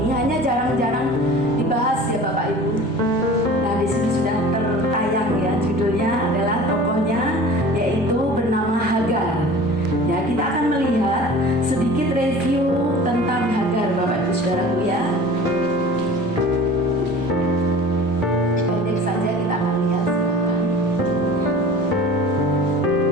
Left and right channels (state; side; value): normal; both; correlation 0.41